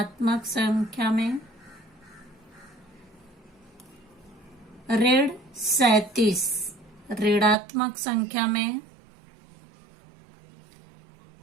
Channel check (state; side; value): drops out; left; at 7.6 s